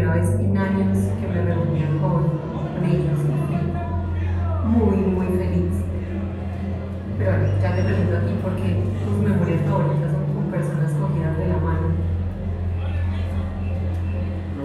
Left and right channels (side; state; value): both; identical; correlation 1.00